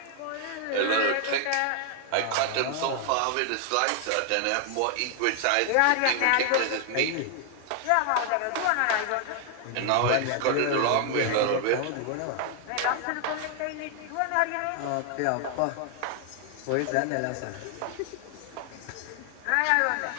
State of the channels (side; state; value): both; different; correlation 0.00